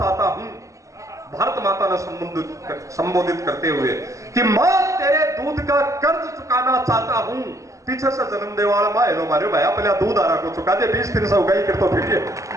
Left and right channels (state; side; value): late; left; 0.16 ms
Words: हूं। भारत माता ने संबोधित करते हुए कि मौत तेरे दूध का कर्ज चुकाना चाहता हूं। पीछे से जन्म देवाला माए लो मारे भाई पहले दूध आ रहा को चुका दे, 20 दिन से उगाई कर तो फिर